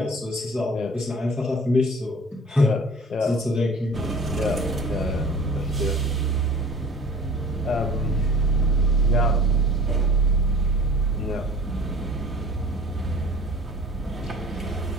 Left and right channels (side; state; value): both; normal; correlation 0.45